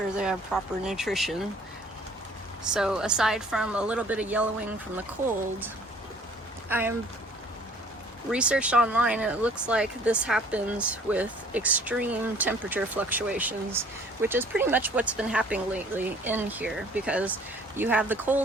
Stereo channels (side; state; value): both; normal; correlation 0.55